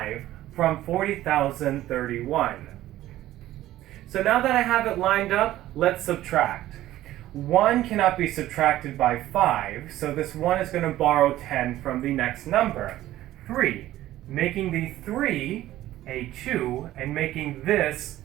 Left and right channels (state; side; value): quieter; left; 14.5 dB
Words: from 40,031. So now that I have it lined up, let's subtract. 1 cannot be subtracted by 5, so this 1 is going to borrow 10 from the next number, 3, making the 3 a 2 and making this